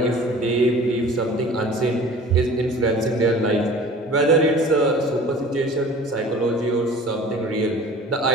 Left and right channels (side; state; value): both; normal; correlation 0.44